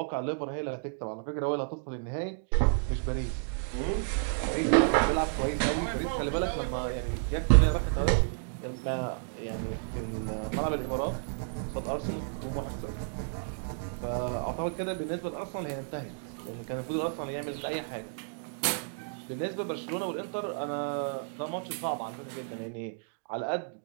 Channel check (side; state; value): left; silent; digital silence